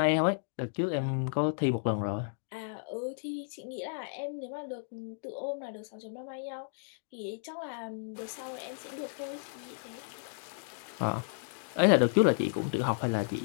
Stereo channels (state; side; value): silent; right; digital silence